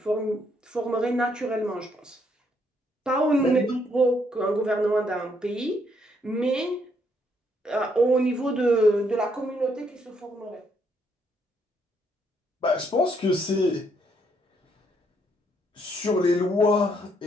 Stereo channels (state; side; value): normal; both; correlation 0.72